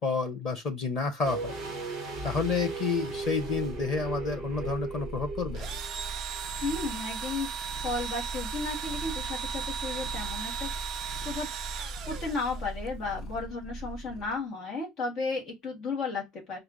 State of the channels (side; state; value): both; normal; correlation 0.50